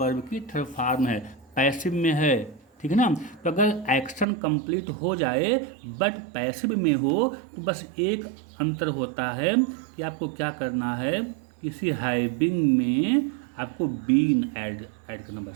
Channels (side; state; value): left; drops out; at 4.2 s